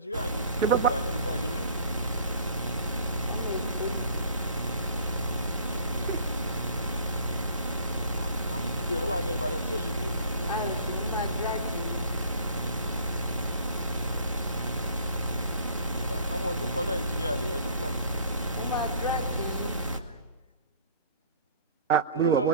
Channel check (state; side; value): inverted; both; correlation -0.50